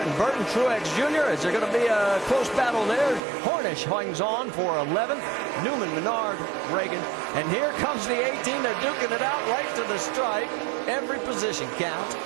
Burton, Truex Jr. Is there going to be a close battle there? Hornish hangs on for 11th. Newman, Menard, Reagan. And here comes the 18. They're duking it out right to the stripe. Every position counts.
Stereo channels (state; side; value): drops out; left; at 3.2 s